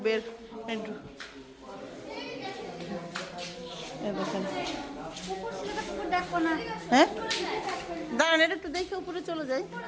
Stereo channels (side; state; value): both; identical; correlation 1.00